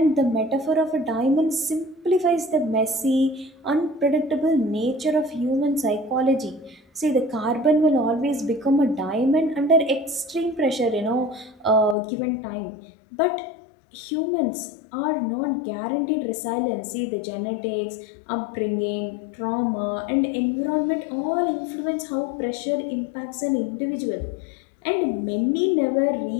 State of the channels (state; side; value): drops out; right; at 12.0 s